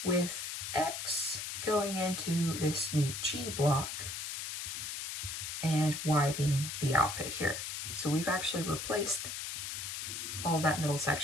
with x going into this new G block and y being the output here. So we've actually replaced all that middle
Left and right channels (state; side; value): noise; left; hiss, 5 dB below the sound